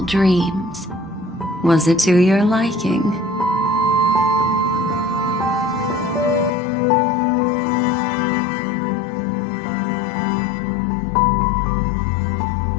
dreams. Was it to your liking?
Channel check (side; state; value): right; drops out; at 6.5 s